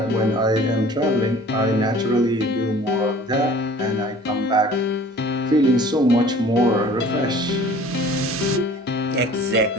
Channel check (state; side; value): normal; both; correlation 0.48